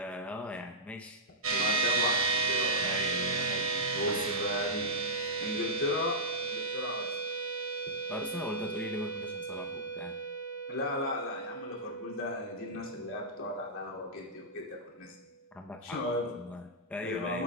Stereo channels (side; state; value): both; normal; correlation -0.12